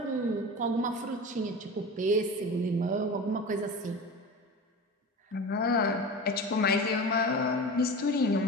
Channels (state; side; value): normal; both; correlation 0.31